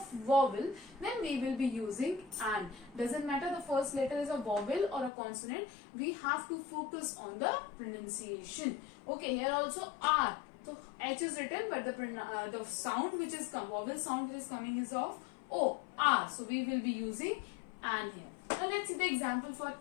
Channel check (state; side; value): drops out; right; at 5.1 s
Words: vowel, then we will be using an. Doesn't matter the first letter is a vowel or a consonant, we have to focus on the pronunciation. Okay, here also R. So H is written, but the sound which is vowel sound which is coming is of O, R. So we will be using an here. Now let's see the example for